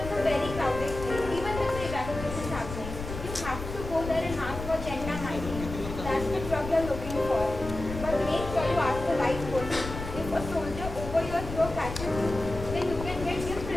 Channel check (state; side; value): noise; left; rumble, 8 dB below the sound